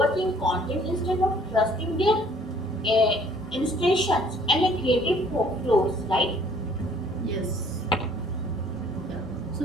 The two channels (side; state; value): both; normal; correlation 0.58